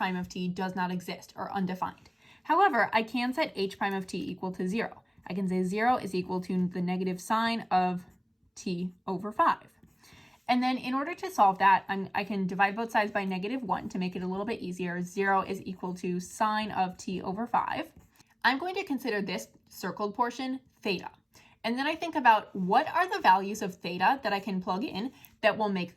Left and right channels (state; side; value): identical; both; correlation 1.00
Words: of t does not exist or undefined. However, I can set h prime of t equal to 0. I can say 0 is equal to the negative sine of t over 5. And then in order to solve that, I can divide both sides by negative 1 to make it a little bit easier. 0 is equal to sine of t over 5. I'm going to consider this circled portion theta. And then I think about what are the values of theta that I can plug in that will make